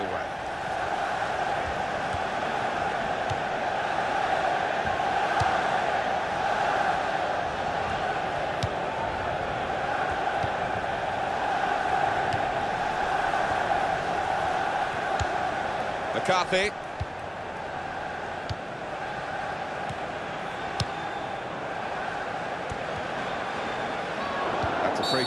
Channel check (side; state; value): both; identical; correlation 1.00